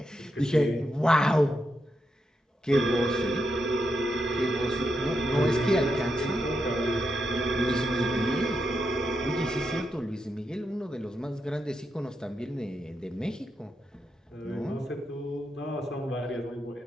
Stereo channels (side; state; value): both; normal; correlation 0.84